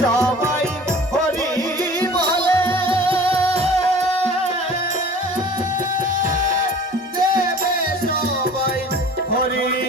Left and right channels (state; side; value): normal; both; correlation 0.45